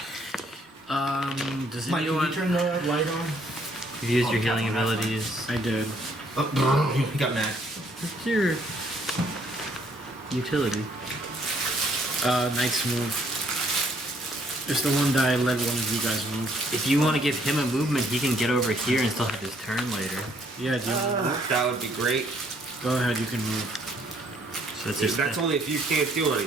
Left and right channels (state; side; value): normal; both; correlation 0.67